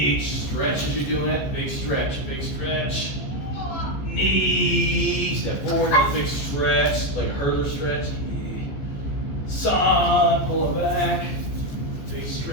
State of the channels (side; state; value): right; late; 14 ms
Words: stretch as you're doing it, big stretch, knee, step forward, big stretch, like a hurdler stretch, San, pull it back. Big